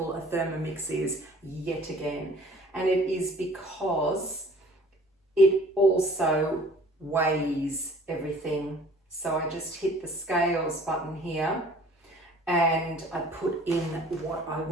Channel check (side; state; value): both; normal; correlation 0.51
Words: a Thermomix is yet again. And it is because it also weighs everything. So I just hit the scales button here and I put in what I